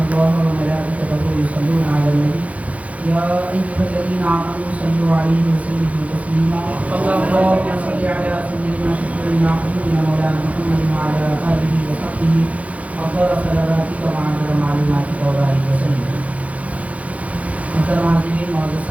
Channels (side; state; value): left; late; 0.067 ms